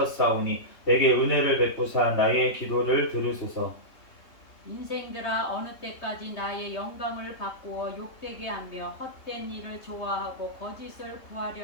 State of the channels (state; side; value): late; right; 3.2 ms